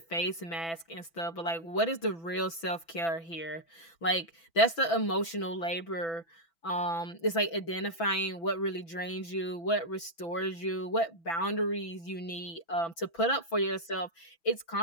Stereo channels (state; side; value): late; right; 6.0 ms